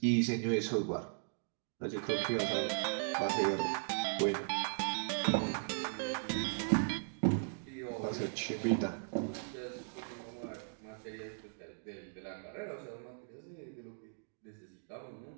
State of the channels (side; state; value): left; silent; digital silence